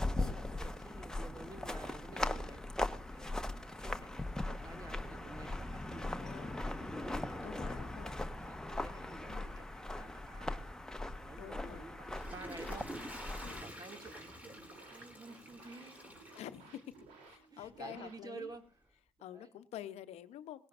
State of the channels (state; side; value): normal; both; correlation 0.86